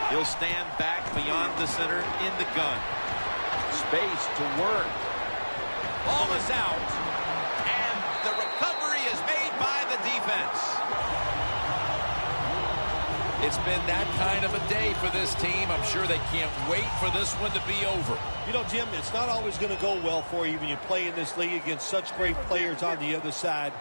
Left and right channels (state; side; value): inverted; both; correlation -1.00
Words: He'll stand back beyond the center in the gun. Space to work. Ball is out. And the recovery is made by the defense. It's been that kind of a day for this team. I'm sure they can't wait for this one to be over. You know, Jim, it's not always going to go well for you when you play in this league against such great players on the other side.